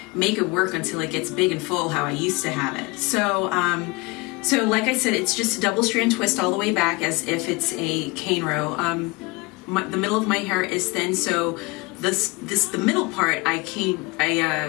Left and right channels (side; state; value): right; quieter; 25.4 dB